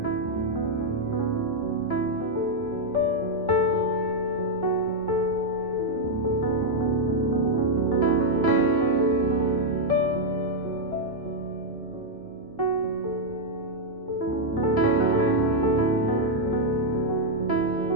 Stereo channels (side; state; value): both; normal; correlation -0.01